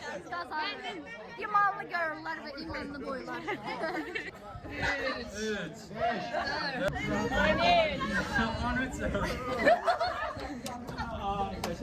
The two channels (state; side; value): identical; both; correlation 1.00